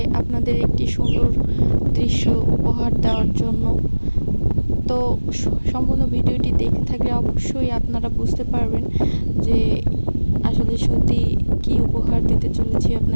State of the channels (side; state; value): both; inverted; correlation -1.00